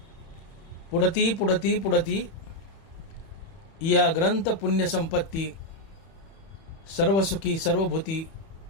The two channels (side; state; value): right; late; 31 ms